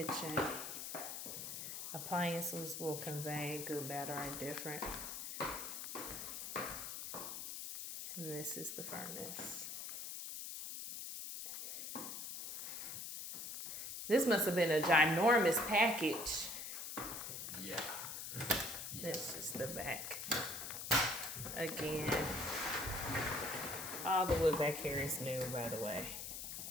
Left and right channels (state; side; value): noise; left; hiss, 6 dB below the sound